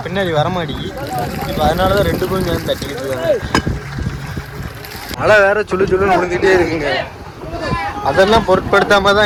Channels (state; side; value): identical; both; correlation 1.00